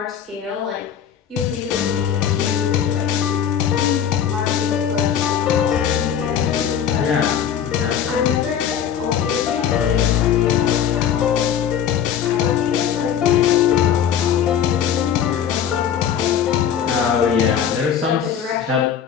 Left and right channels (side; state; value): right; quieter; 8.8 dB